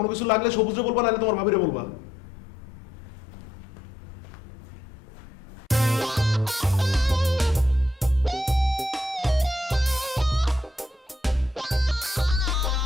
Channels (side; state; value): both; normal; correlation 0.76